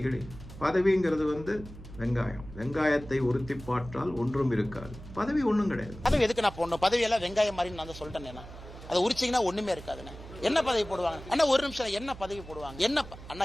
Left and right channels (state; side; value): noise; right; hum, 15 dB below the sound